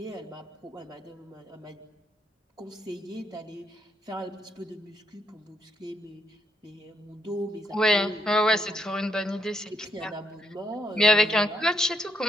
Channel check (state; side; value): normal; both; correlation 0.75